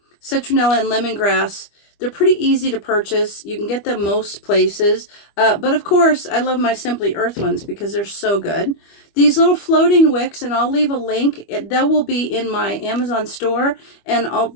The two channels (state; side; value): late; right; 25 ms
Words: and lemongrass, they're pretty easy to purchase. You can get them most places. But of course, I love my Simply Earth ones because they're so good. These little floating wicks, and I'll leave a link. That will be in my Amazon store, and